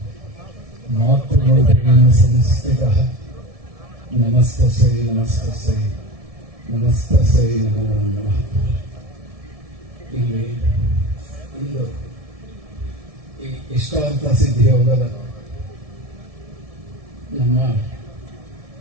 ಮಾತೃಮೂರ್ತಿನ ಸಂಸ್ಥಿತಃ ನಮಸ್ತಸ್ಯೈ ನಮಸ್ತಸ್ಯೈ ನಮಸ್ತಸ್ಯೈ ನಮೋ ನಮಃ. ಇಲ್ಲಿ ಇಂದು ಈ ಇಷ್ಟಾರ್ಥ ಸಿದ್ಧಿ ಯೋಗದ ನಮ್ಮ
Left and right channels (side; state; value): left; late; 1.7 ms